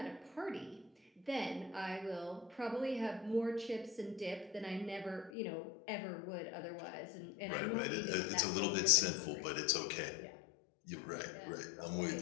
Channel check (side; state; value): right; drops out; at 5.3 s